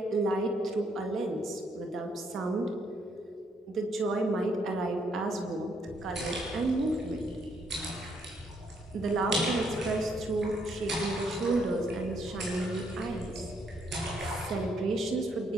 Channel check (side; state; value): both; normal; correlation 0.72